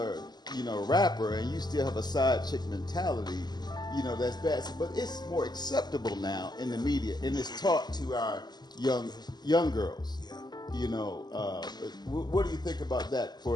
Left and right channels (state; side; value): late; right; 0.20 ms